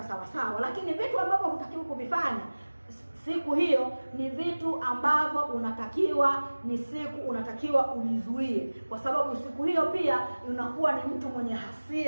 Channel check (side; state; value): both; inverted; correlation -1.00